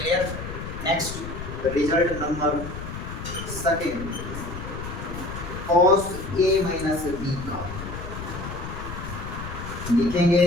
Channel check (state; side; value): noise; left; rumble, 8 dB below the sound